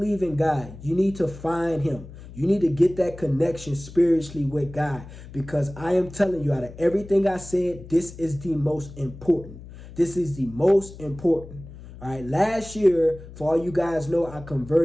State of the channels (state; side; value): noise; left; hum, 16 dB below the sound